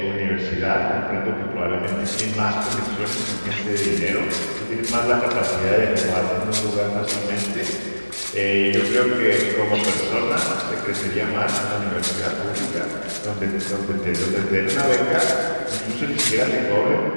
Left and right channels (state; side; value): inverted; both; correlation -1.00